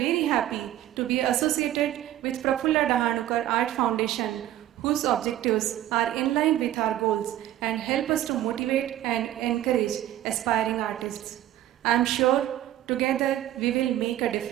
happy to be associated with Prafulla Dahanukar Art Foundation, whose objectives are in line with our goals and help us to motivate and encourage aspiring artists. I am sure together we will make a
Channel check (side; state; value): left; quieter; 13.2 dB